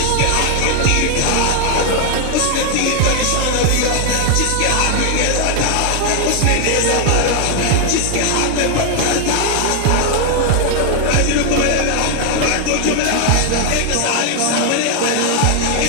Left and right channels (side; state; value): both; different; correlation 0.00